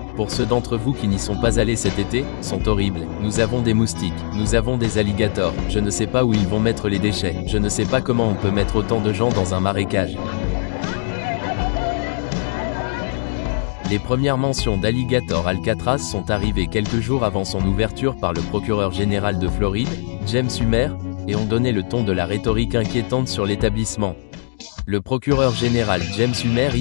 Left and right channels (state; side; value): silent; right; digital silence